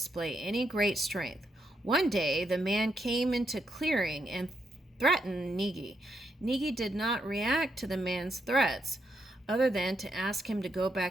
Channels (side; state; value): both; normal; correlation 0.80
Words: any great strength. One day, the man came into clearing and threatened Niggy. Niggy did not react to the man's threats, other than to ask him to go